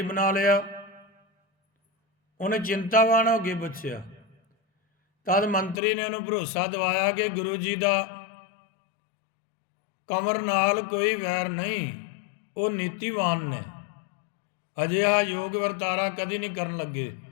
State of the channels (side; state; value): right; drops out; at 5.8 s